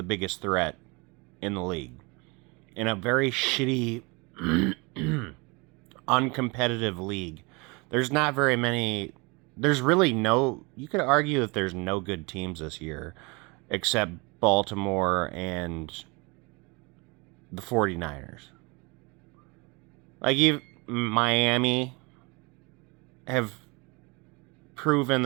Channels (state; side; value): quieter; left; 27.8 dB